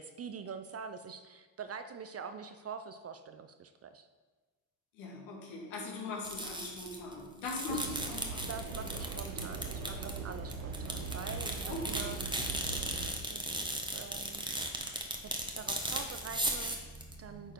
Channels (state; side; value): normal; both; correlation 0.03